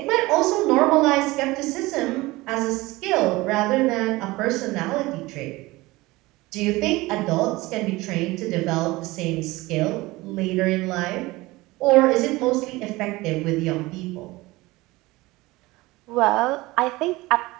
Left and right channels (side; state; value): left; quieter; 20.6 dB